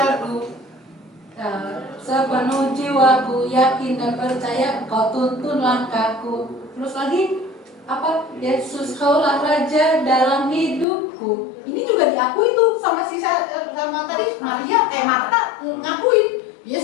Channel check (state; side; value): drops out; right; at 10.9 s